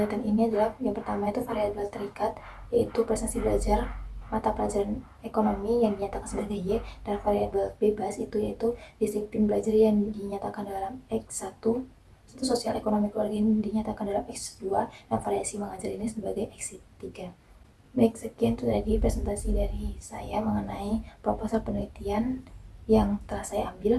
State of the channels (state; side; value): identical; both; correlation 1.00